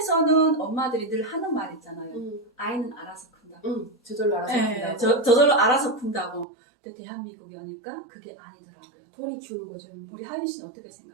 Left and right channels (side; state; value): left; drops out; at 6.5 s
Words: 엄마들이 늘 하는 말 있잖아요. 아이는 알아서 큰다고. 저절로 알아서 네, 큰다고. 저절로 알아서 큰다고. 근데 대한민국에 오니까 그게 아니더라고요. 돈이 키우는 거죠. 우리 하윤 씨는 어떻게